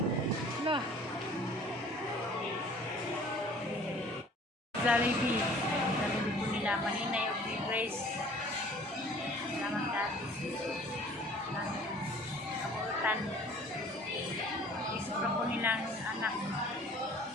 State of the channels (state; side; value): normal; both; correlation 0.50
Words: Lah. Jollibee. Jollibee po nila. Maninay of Grace. Salamat dati. Kabuutan. Isipra po nilang anak.